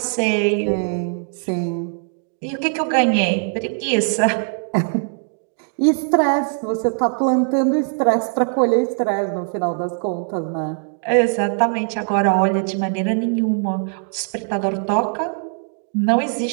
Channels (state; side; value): silent; left; 57 dB below the other